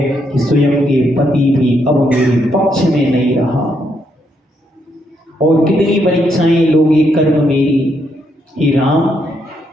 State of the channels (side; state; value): both; normal; correlation 0.77